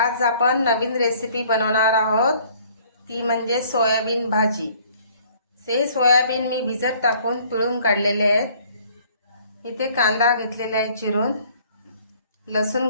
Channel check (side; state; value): both; inverted; correlation -0.58